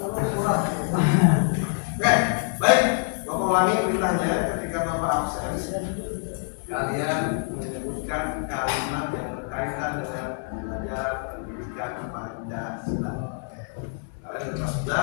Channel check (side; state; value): right; silent; 61 dB below the other